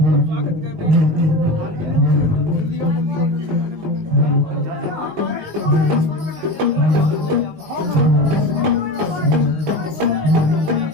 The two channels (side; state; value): left; late; 19 ms